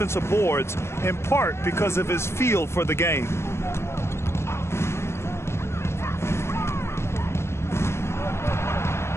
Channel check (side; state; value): right; late; 0.13 ms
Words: boards, in part because of his feel for the game.